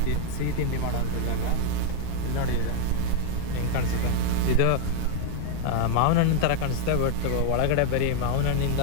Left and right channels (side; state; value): both; different; correlation 0.00